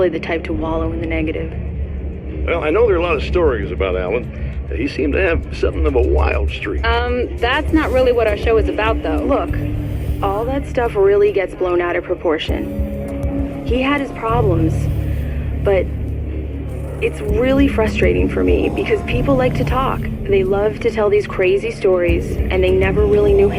the type to wallow in the negative. Well, I know there are a lot of stories about Alan. He seemed to have something of a wild streak. That's not really what our show is about, though. Look, all that stuff really gets blown out of proportion. He had his problems, but it's really frustrating for me because people like to talk. They love to tell these crazy stories, and they never really knew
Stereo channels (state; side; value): identical; both; correlation 1.00